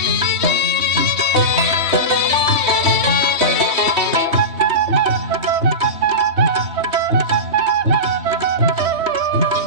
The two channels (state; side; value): late; left; 3.1 ms